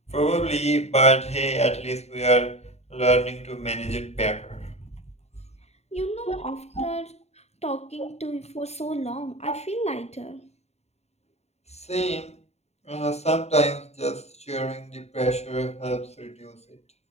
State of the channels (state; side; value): late; right; 0.31 ms